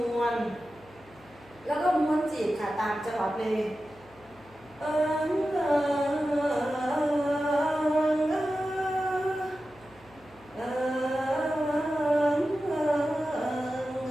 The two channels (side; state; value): left; noise; hum, 26 dB below the sound